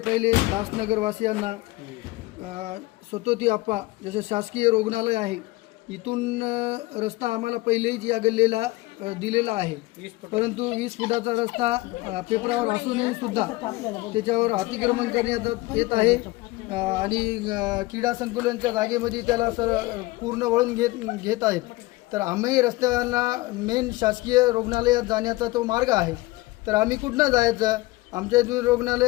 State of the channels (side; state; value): right; quieter; 20.7 dB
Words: दासनगरवासियांना स्वतोती आप्पा जसे शासकीय रुग्णालय आहे इथून रस्ता आम्हाला पहिलेच या गल्लीला दिलेला आहे, परंतु 20 फुटाचा रस्ता पेपरावर असूनही सुद्धा त्याच्यावर अतिक्रमण करण्यात येत आहे आणि क्रीडा संकुलांच्या जागेमध्ये त्याला पूर्ण वळून घेत आहेत. तर आम्ही रस्त्याला मेन शासकीय रुग्णालयात जाण्याचा तो मार्ग आहे, तर आम्ही कुठनं जायचं? आमच्या इथून